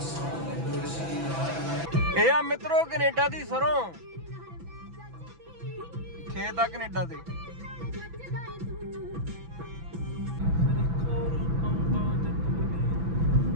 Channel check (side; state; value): left; late; 6.0 ms